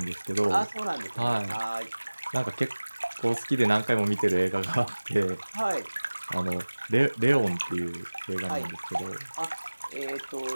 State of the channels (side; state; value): both; inverted; correlation -1.00